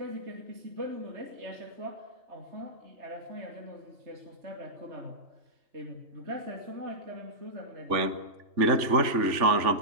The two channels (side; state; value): left; late; 3.4 ms